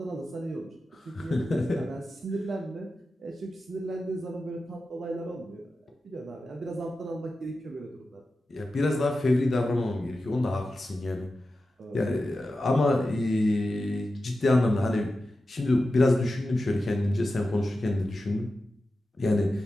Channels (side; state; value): both; normal; correlation 0.92